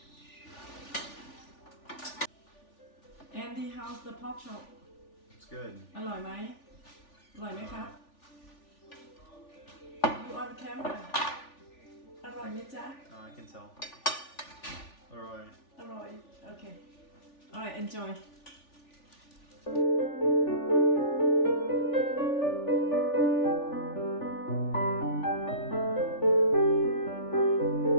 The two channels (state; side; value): late; right; 3.4 ms